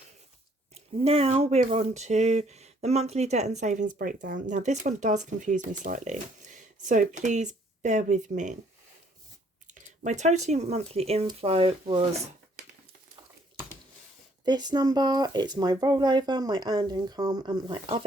now we're on to the monthly debt and savings breakdown. Now this one does confuse me slightly, so please bear with me. My total monthly inflow was this number. It's my rollover, my earned income, and my other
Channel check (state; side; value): normal; both; correlation 0.64